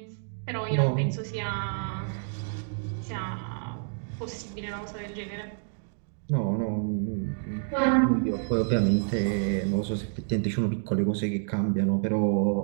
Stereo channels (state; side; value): silent; left; 59 dB below the other